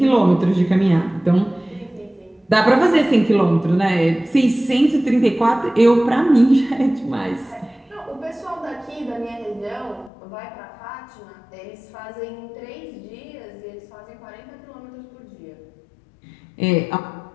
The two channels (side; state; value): right; drops out; at 10.1 s